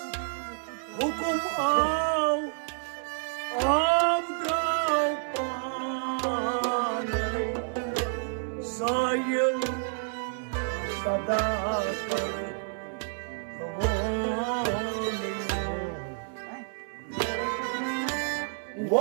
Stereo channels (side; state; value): left; silent; 58 dB below the other